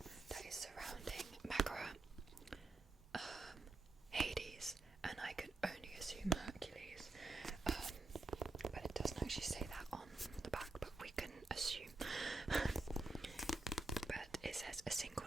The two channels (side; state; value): left; quieter; 3.1 dB